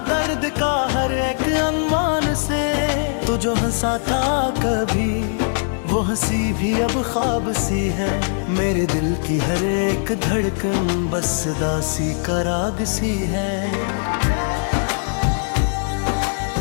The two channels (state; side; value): silent; right; digital silence